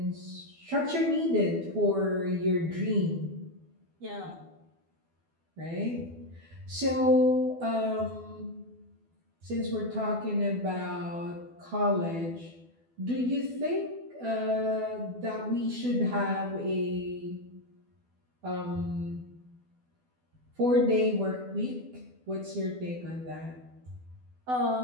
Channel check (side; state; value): left; late; 12 ms